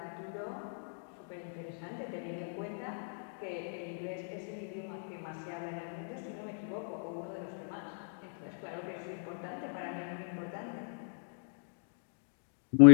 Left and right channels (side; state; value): right; silent; digital silence